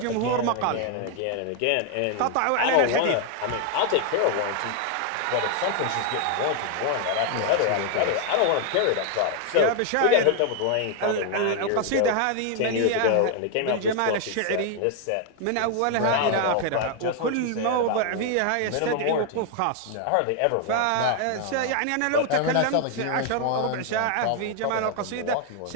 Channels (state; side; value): different; both; correlation 0.00